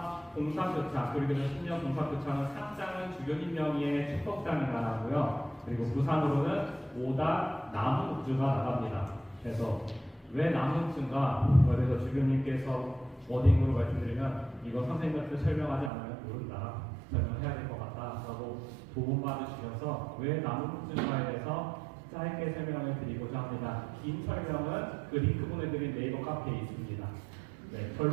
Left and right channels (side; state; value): left; drops out; at 15.9 s